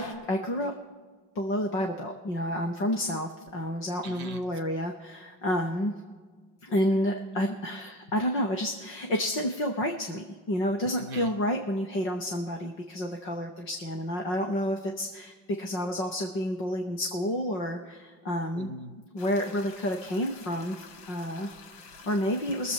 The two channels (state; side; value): late; right; 5.5 ms